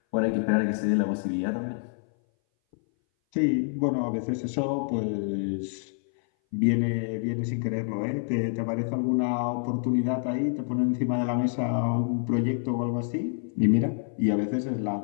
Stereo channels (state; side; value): silent; right; 58 dB below the other